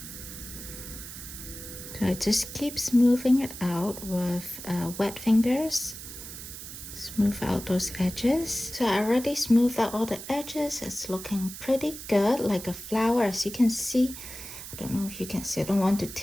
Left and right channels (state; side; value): noise; right; hiss, 11 dB below the sound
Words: So I just keep smoothing it out with wet fingers. Smooth out those edges. So I already smoothed out all the edges. It's looking pretty good, like a flower, as you can see. I don't know if you can see, I don't want to